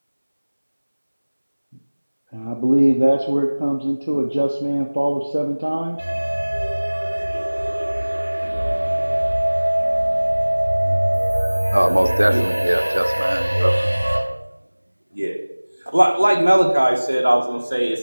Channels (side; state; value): both; inverted; correlation -1.00